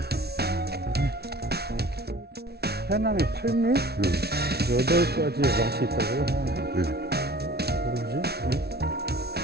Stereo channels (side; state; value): left; late; 0.47 ms